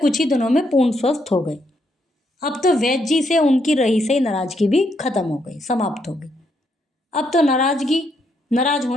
ही दिनों में पूर्ण स्वस्थ हो गए। अब तो वैद्य जी से उनकी रही से नाराजगी भी खत्म हो गई, समाप्त हो गई। अब तो नाराज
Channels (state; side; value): normal; both; correlation 0.76